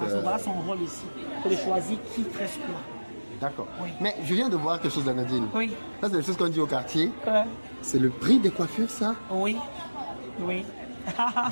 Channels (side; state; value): both; inverted; correlation -1.00